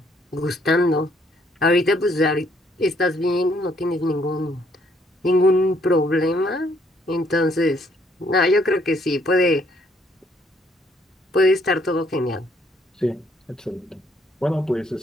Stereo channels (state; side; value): normal; both; correlation 0.67